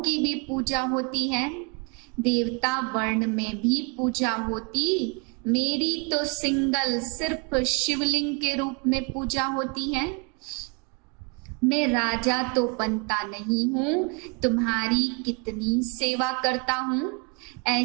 भी पूजा होती है, देवता वर्ण में भी पूजा होती। मेरी तो सिंगल सिर्फ शिवलिंग के रूप में पूजा होती है। मैं राजा तो बनता नहीं हूँ, तुम्हारी कितनी सेवा करता हूँ।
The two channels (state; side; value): quieter; left; 33.4 dB